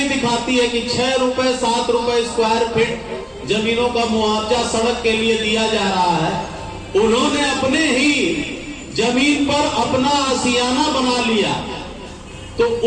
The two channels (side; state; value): both; identical; correlation 1.00